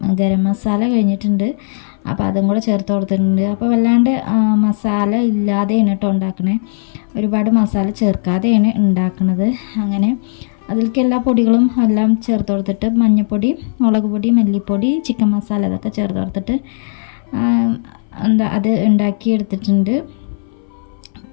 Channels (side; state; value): right; silent; 60 dB below the other